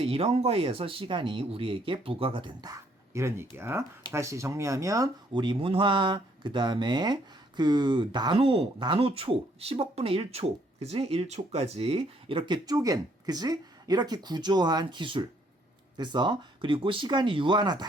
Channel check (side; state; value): both; normal; correlation 0.67